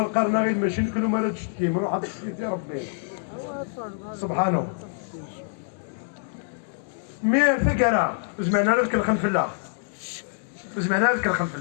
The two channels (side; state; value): right; silent; digital silence